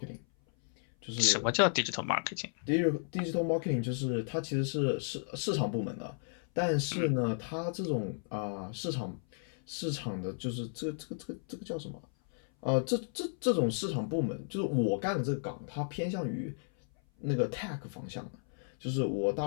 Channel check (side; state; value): right; silent; 55 dB below the other